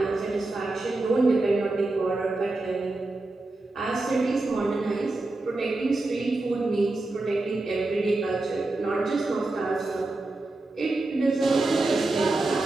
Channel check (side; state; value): left; quieter; 3.0 dB